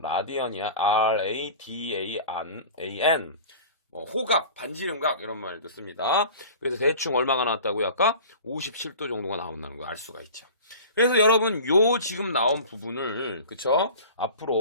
R-A-D-A-N. 호각, 반지름각 이런 말도 씁니다. 그래서 대충 얼마가 나왔다고요? 아까 57도 정도가 나온다는 걸 알 수가 있죠. 그래서 여러분 요 지금 나온 부분을 그쵸?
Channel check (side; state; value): both; inverted; correlation -0.39